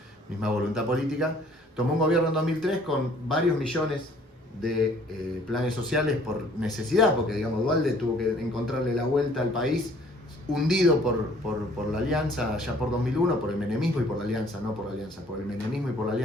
misma voluntad política, tomó un gobierno en 2003 con varios millones de planes sociales por necesidad, porque digamos Duhalde tuvo que encontrarle la vuelta al país, hundido por la alianza ya por 2001, por el menemismo y por la alianza, no por la alianza, por el menemismo y por la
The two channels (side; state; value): both; normal; correlation 0.57